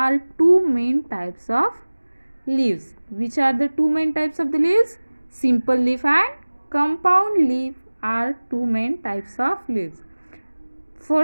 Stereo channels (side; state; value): both; inverted; correlation -1.00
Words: two main types of leaves. Which are the two main types of the leaves? Simple leaf and compound leaf are two main types of leaves.